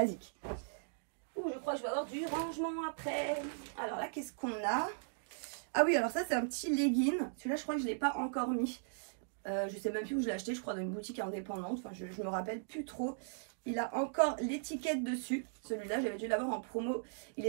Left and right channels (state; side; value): silent; left; digital silence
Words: Ouh, je crois que je vais avoir du rangement après. Alors là, qu'est-ce qu'on a? Ah oui, alors ça c'est un petit legging. Celui-là, je crois que je ne l'ai pas encore mis. Je sais même plus où je l'ai acheté, je crois dans une boutique indépendante. Enfin, je me rappelle plus trop. Il a encore l'étiquette dessus. Celui-là, j'avais dû l'avoir en promo. Il